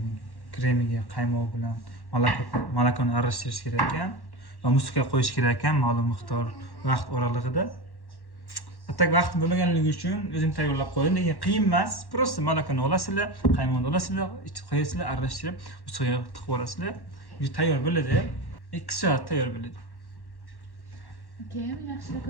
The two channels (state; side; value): late; right; 1.1 ms